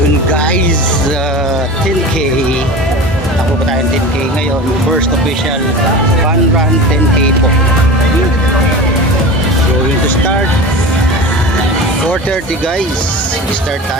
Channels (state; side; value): normal; both; correlation 0.33